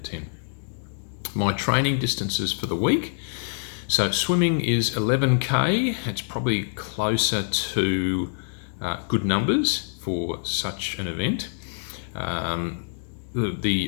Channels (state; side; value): silent; right; digital silence